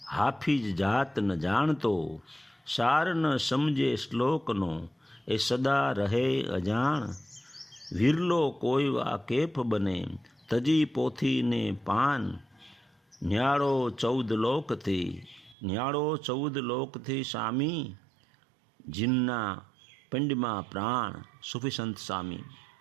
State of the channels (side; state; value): left; drops out; at 15.6 s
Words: हाफिज जात न जानतो, सार न समझे श्लोक नो, ए सदा रहे अजाण, विरलो कोई वाकेफ बने, तजी पोथी ने पान, न्याड़ो 14 लोक थी, न्याड़ो 14 लोक थी स्वामी, जिन्ना पिंडमा प्राण। सूफी संत स्वामी।